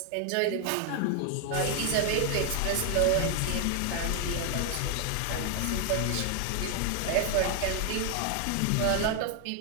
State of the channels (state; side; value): different; both; correlation 0.01